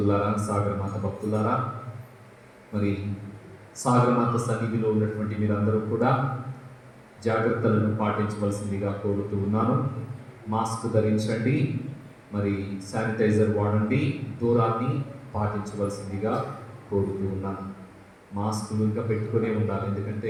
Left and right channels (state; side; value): identical; both; correlation 1.00